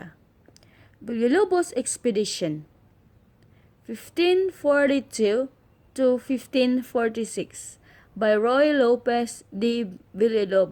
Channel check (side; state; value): both; identical; correlation 1.00